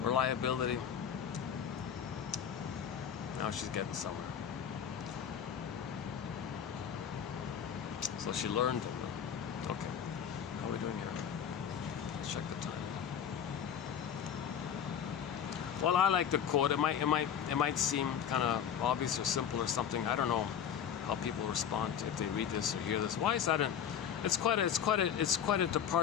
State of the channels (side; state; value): right; quieter; 8.4 dB